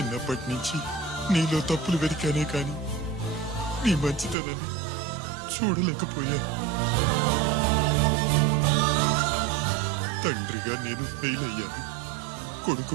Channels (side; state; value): left; drops out; at 4.4 s